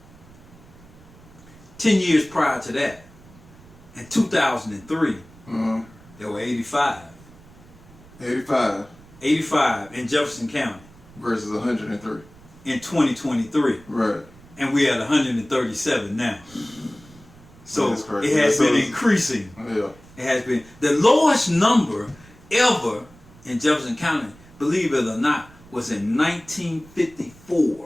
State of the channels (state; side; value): noise; right; rumble, 23 dB below the sound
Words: 10 years prior to that, in 2003, there were 85. 85. 85 in Jefferson County. Versus 103. In 2023. Right. And we're at 137 now. So it has been increasing. Yeah. It has been. The lowest number ever in Jefferson County, believe it or not, was in